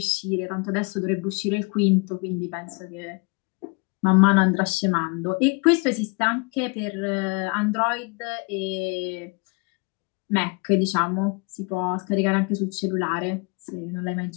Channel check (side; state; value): right; quieter; 31.5 dB